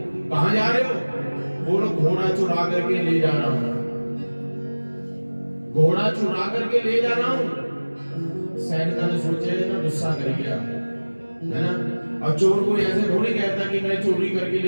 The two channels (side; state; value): both; inverted; correlation -1.00